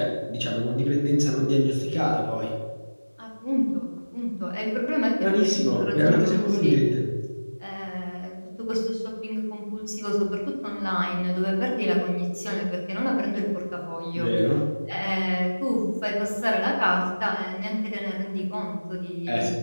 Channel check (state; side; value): inverted; both; correlation -1.00